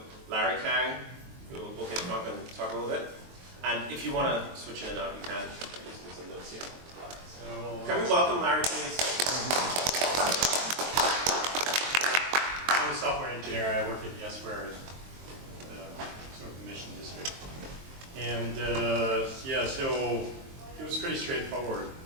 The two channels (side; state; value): left; late; 23 ms